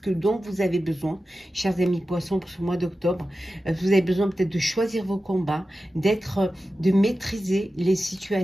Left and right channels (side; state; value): both; normal; correlation 0.93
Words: dont vous avez besoin, chers amis poissons, pour ce mois d'octobre. Vous avez besoin peut-être de choisir vos combats, de maîtriser les